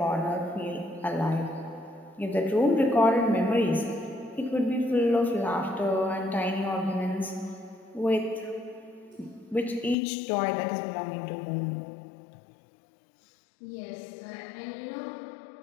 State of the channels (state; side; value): drops out; right; at 10.0 s